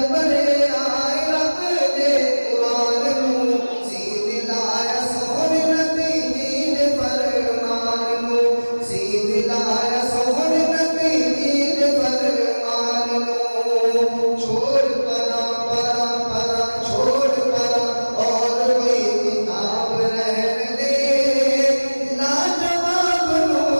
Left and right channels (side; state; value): both; inverted; correlation -1.00